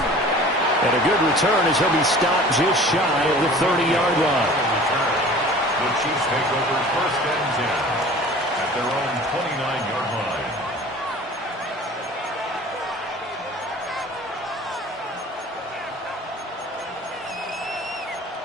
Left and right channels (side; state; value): both; normal; correlation 0.45